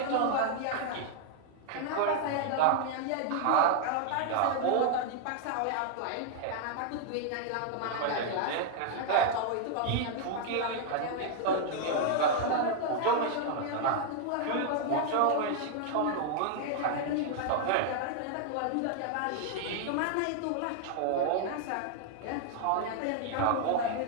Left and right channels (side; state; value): both; different; correlation 0.00